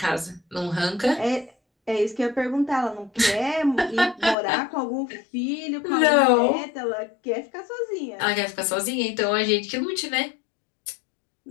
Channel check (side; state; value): right; drops out; at 4.4 s